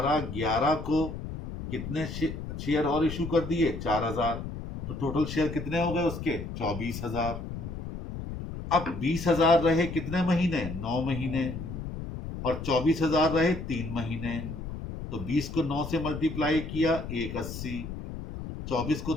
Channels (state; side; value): noise; left; rumble, 8 dB below the sound